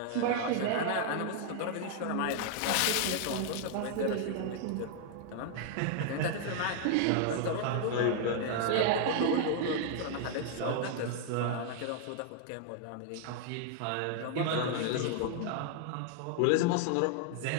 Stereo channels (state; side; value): different; both; correlation 0.00